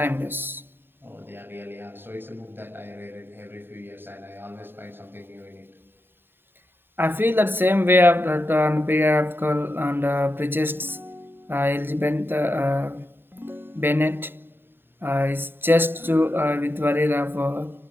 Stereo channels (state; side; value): late; left; 0.10 ms